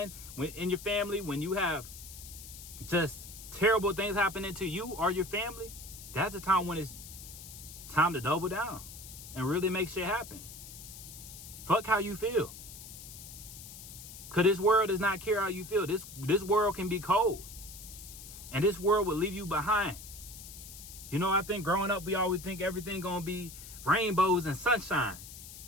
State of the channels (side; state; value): left; noise; hiss, 14 dB below the sound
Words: in your family. When you have just terrible things happening to you or your family. That's the time when it's time to double down. And really make shit happen. Fuck how you feel. Because this world does not care how you feel. This world can be cold. And this world will leave you behind. You know, I think growing up, we always think everything gonna be rainbows and sunshine.